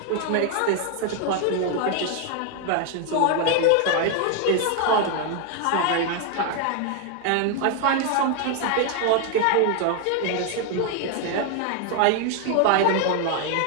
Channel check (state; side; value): different; both; correlation 0.00